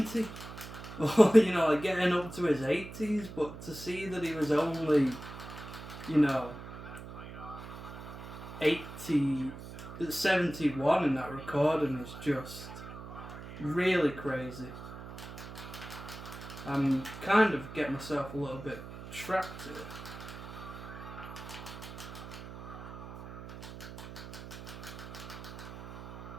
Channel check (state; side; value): noise; right; hum, 12 dB below the sound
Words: Or, getting up to his 80s, but to see that he was only, 71 in that recording is just really crazy. I'm kind of getting myself a little bit trapped here.